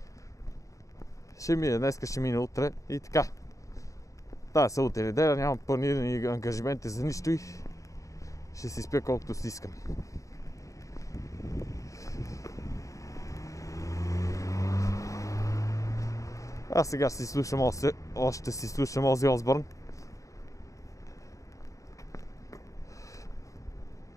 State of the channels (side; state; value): right; late; 0.16 ms